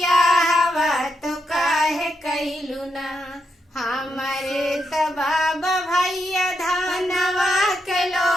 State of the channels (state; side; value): normal; both; correlation 0.82